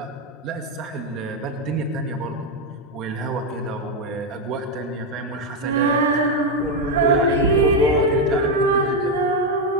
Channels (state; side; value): normal; both; correlation 0.04